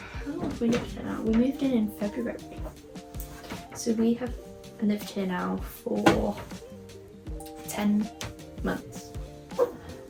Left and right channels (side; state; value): both; identical; correlation 1.00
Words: long have we lived here now? We moved in February. So we have lived here now for 10 months.